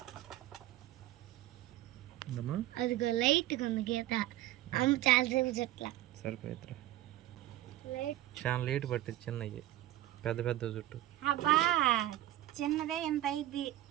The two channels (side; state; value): left; quieter; 14.5 dB